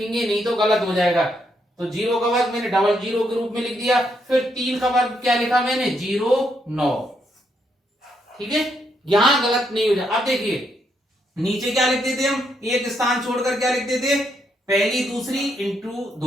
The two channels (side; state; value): both; normal; correlation 0.77